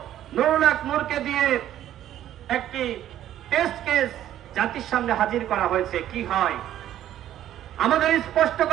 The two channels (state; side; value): quieter; left; 11.9 dB